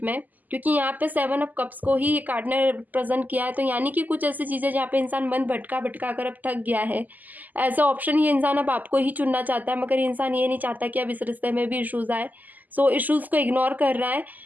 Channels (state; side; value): late; left; 0.083 ms